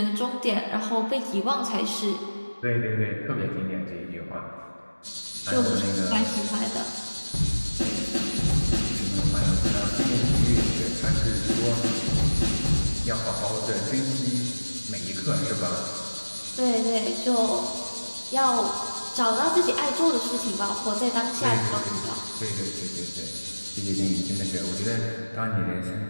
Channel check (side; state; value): both; inverted; correlation -1.00